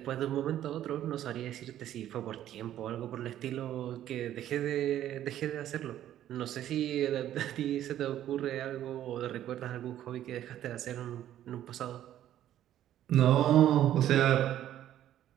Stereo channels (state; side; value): quieter; left; 11.9 dB